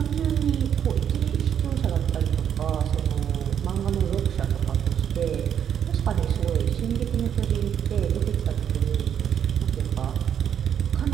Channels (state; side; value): quieter; left; 8.8 dB